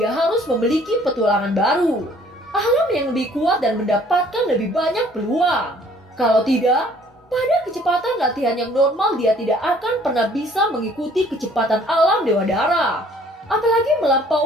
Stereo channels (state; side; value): normal; both; correlation 0.57